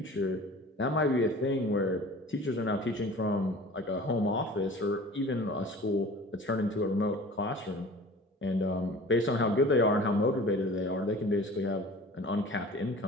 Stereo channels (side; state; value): both; normal; correlation 0.43